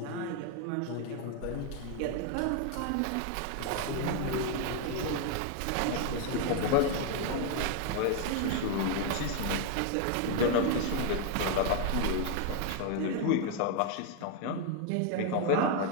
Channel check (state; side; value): different; both; correlation 0.01